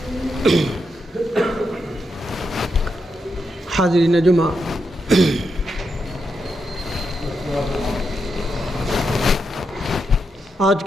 حاضرین جمعہ، آج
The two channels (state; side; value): normal; both; correlation 0.84